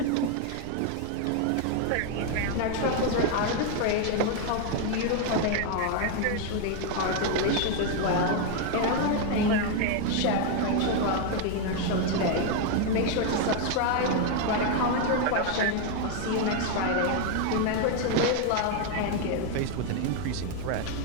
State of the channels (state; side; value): different; both; correlation 0.01